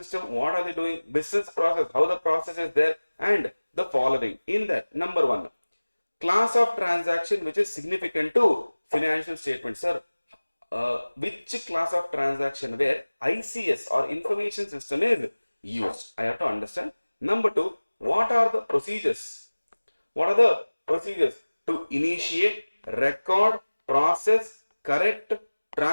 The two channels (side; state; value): both; inverted; correlation -1.00